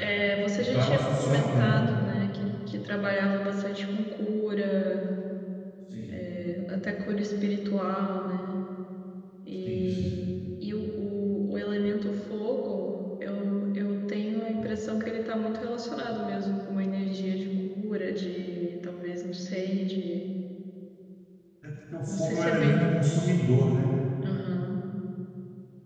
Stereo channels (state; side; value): identical; both; correlation 1.00